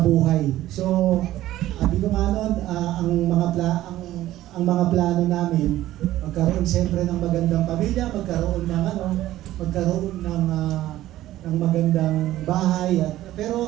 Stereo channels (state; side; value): quieter; left; 14.6 dB